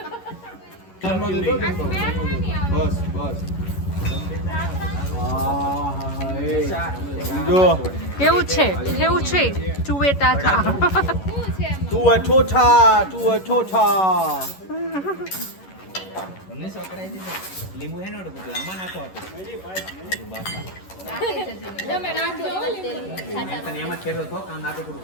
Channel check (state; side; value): late; right; 11 ms